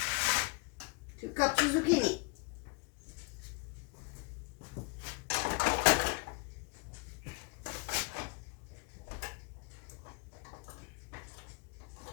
2 cups of zucchini.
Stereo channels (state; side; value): quieter; right; 29.9 dB